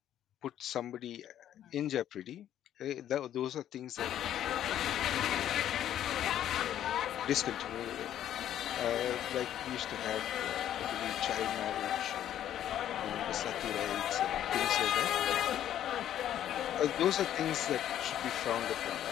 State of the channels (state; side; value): quieter; right; 11.2 dB